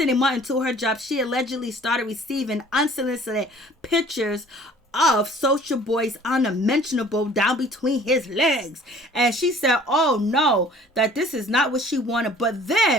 a month into her job, she allegedly started receiving unsolicited pictures of Soulja Boy's unmentionable down between his legs. And she said, oh no, that this is not what she wanted. But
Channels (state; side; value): normal; both; correlation 0.51